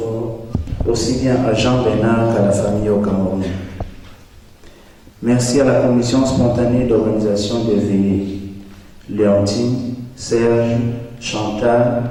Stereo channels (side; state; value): both; identical; correlation 1.00